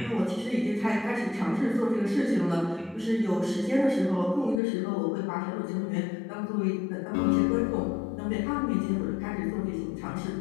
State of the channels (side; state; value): right; drops out; at 4.6 s